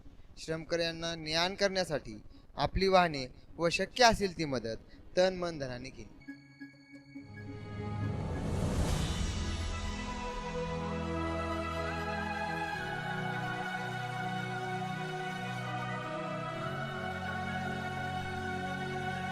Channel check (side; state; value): both; identical; correlation 1.00